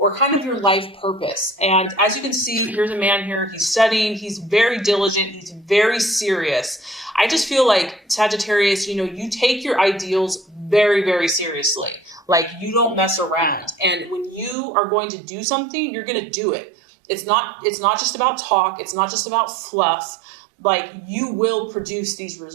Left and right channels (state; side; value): drops out; left; at 14.6 s